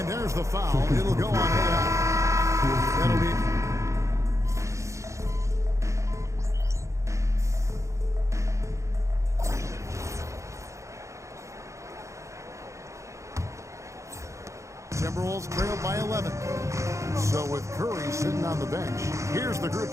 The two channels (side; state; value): left; late; 0.15 ms